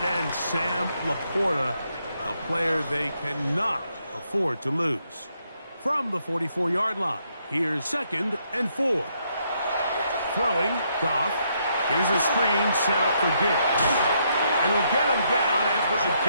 end, Sam Laporta, a player they cannot afford to lose. From the 44-yard line, here's 2nd and 4. Throwing, Goff. Here's a screen set up for Gibbs. And we'll get him down after a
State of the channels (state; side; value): inverted; both; correlation -0.75